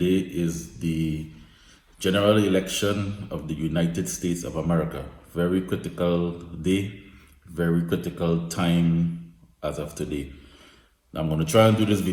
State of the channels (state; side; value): identical; both; correlation 1.00